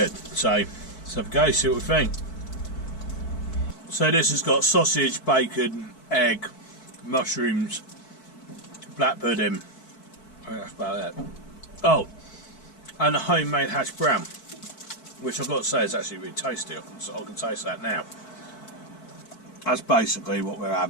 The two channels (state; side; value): late; right; 4.6 ms